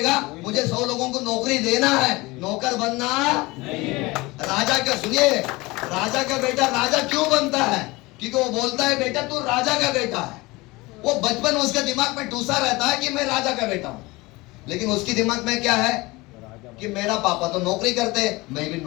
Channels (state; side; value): quieter; right; 22.3 dB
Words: मुझे 100 लोगों को नौकरी देना है, नौकर बनना नहीं है। राजा का सुनिए, राजा का बेटा राजा क्यों बनता है? क्योंकि वो बोलता है बेटा तू राजा का बेटा है। वो बचपन उसके दिमाग में टूसा रहता है कि मैं राजा का बेटा हूं, लेकिन उसकी दिमाग में क्या है कि मेरा पापा तो नौकरी करते, मैं भी